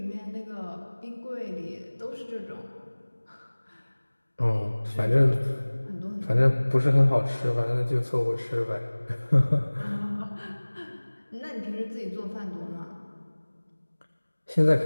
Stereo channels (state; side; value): inverted; both; correlation -1.00